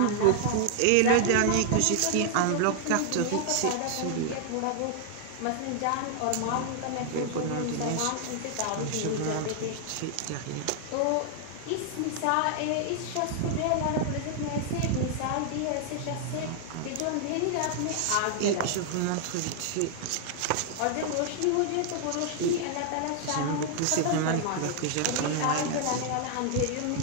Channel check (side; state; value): both; different; correlation 0.00